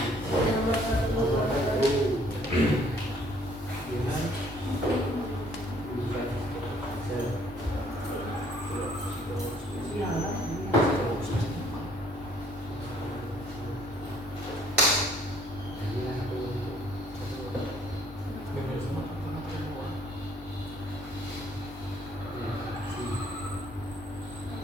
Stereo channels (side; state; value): both; normal; correlation 0.61